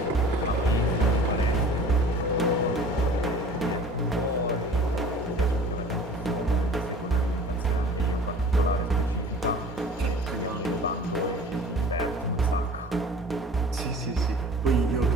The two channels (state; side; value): normal; both; correlation 0.45